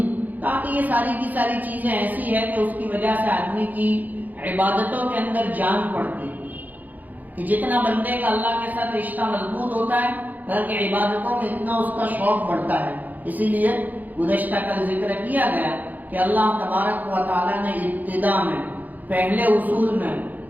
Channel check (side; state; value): left; late; 0.082 ms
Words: تاکہ یہ ساری کی ساری چیزیں ایسی ہیں کہ اس کی وجہ سے آدمی کی عبادتوں کے اندر جان پڑتی ہے. کہ جتنا بندے کا اللہ کے ساتھ رشتہ مضبوط ہوتا ہے، بلکہ عبادتوں میں اتنا اس کا شوق بڑھتا ہے. اسی لیے گزشتہ کل ذکر کیا گیا کہ اللہ تبارک و تعالیٰ نے ابتدا میں پہلے اصول میں